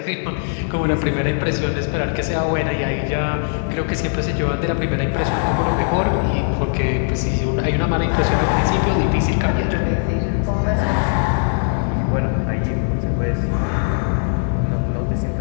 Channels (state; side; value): silent; right; digital silence